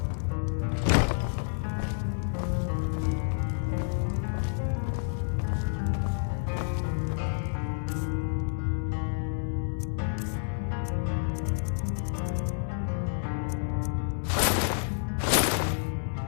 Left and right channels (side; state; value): right; silent; 58 dB below the other